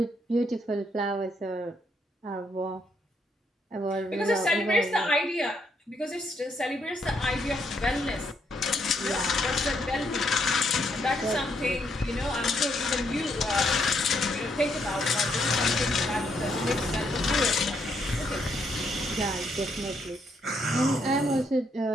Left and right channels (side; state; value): both; normal; correlation 0.74